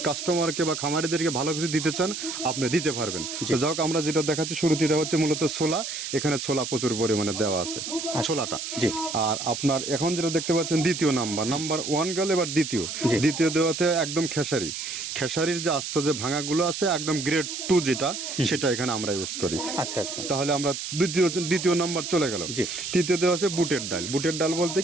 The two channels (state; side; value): noise; right; hiss, 6 dB below the sound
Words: কাস্টমারকে বা খামারিদেরকে ভালো কিছু দিতে চান আপনি দিতে পারবেন। তো যাক, আমরা যেটা দেখাচ্ছি শুরুতে এটা হচ্ছে মূলত ছোলা। এখানে ছোলা প্রচুর পরিমাণে দেওয়া আছে, ছোলাটা। আর আপনার এখন যেটা দেখতে পাচ্ছেন দ্বিতীয় নাম্বার 1 গেল, এবার দ্বিতীয় দেওয়াতে একদম খেসারির যে আস্ত যে ভাঙাগুলো আছে একদম গ্রেড 2 যেটা, সেটা এখানে আমরা ইউজ করি। আচ্ছা, তাহলে আমরা দ্বিতীয় নাম্বার চলে গেল। তৃতীয় দেওয়া আছে বুটের ডাল বলতে